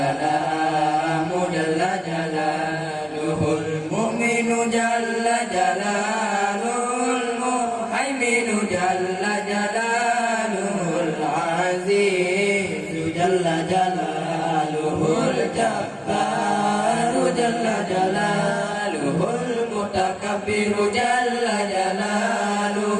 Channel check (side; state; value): both; identical; correlation 1.00